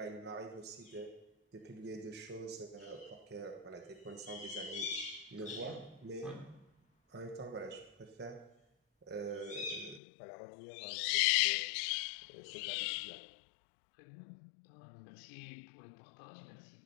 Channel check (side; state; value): right; drops out; at 10.0 s